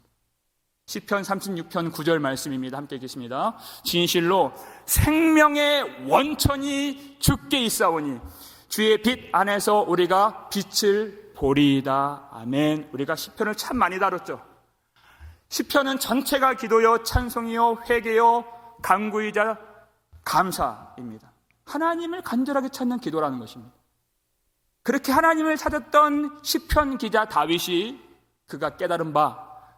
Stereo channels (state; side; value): identical; both; correlation 1.00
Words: 시편 36편 9절 말씀입니다. 함께 읽겠습니다. 진실로 생명의 원천이 주께 있사오니 주의 빛 안에서 우리가 빛을 보리이다. 아멘. 우리가 시편을 참 많이 다뤘죠. 시편은 전체가 기도요, 찬송이요, 회개요, 간구이자 감사입니다. 하나님을 간절하게 찾는 기도라는 것입니다. 그렇게 하나님을 찾았던 시편 기자 다윗이 그가 깨달은 바